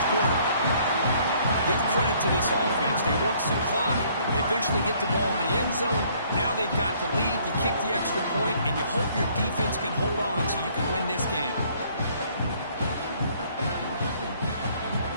quarter. Give credit to this offense. They work some clock. They eventually get the ball in the end zone. Now they've got the lead. You kick the extra point, and you hope your defense can hold on so you can win this game.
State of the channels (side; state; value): both; inverted; correlation -0.62